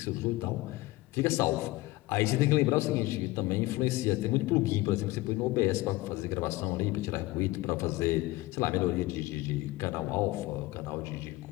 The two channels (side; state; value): right; quieter; 19.7 dB